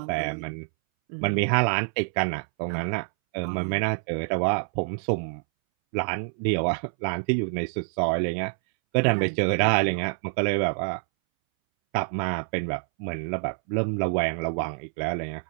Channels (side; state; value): left; silent; 60 dB below the other